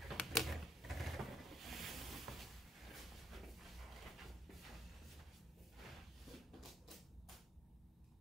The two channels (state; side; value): normal; both; correlation 0.72